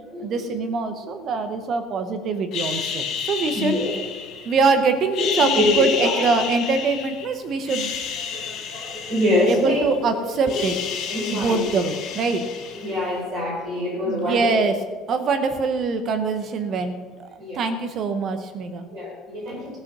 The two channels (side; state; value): both; normal; correlation 0.54